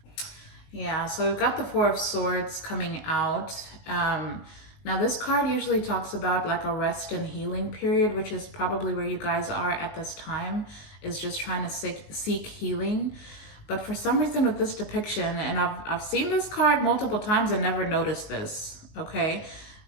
Yeah, so we've got the Four of Swords coming out. Now this card usually talks about like a rest and healing period, which is probably where you guys are at this time, is just trying to seek healing. But for some reason with this depiction, and I've seen this card multiple times and never noticed this, okay?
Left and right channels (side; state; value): right; late; 19 ms